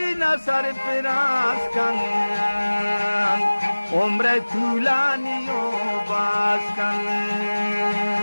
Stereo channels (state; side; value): inverted; both; correlation -1.00